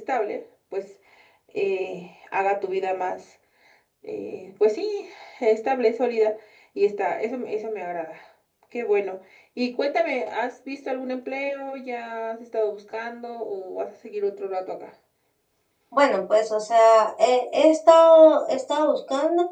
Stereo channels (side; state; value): both; identical; correlation 1.00